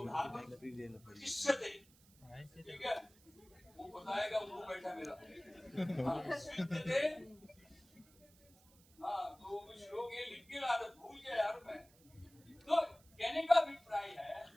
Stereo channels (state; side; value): noise; right; hiss, 27 dB below the sound